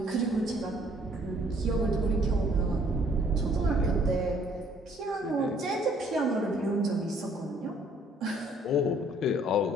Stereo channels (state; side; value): normal; both; correlation 0.61